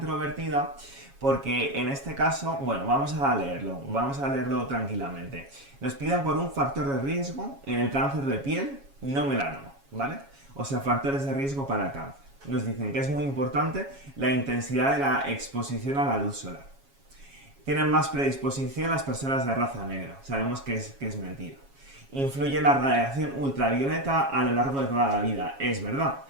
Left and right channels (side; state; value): left; late; 7.3 ms